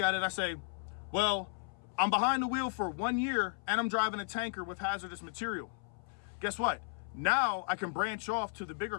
it, I say, well, I'm behind the wheel for 1 year and I'm driving a tanker with hazardous material. Guess what? Now I can branch off to the bigger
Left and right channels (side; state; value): right; silent; 55 dB below the other